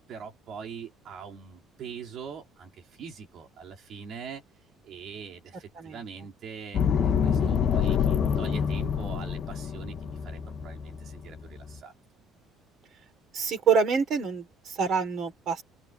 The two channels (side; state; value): both; normal; correlation 0.56